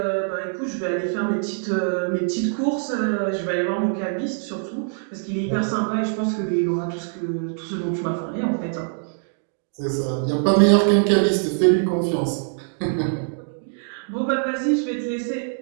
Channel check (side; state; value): left; silent; digital silence